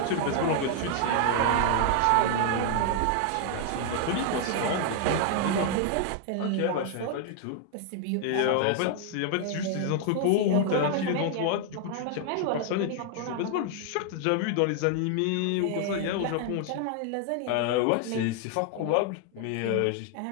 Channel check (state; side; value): different; both; correlation 0.00